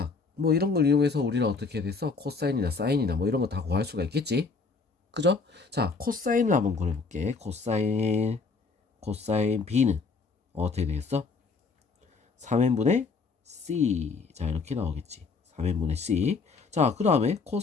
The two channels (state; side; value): quieter; right; 4.5 dB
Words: 뭐 이런 걸 이용해서 우리는 어떻게 됐어? 코사인이나 사인이나 뭐 이런 거 다 구할 수가 있겠지? 그죠? 자, 코사인을 한번 그려볼게. 코사인 B는 어떻게 되겠어? 3n분의 C. 자, 이렇게 나오겠지. 3n분의 C. 자, 그 다음에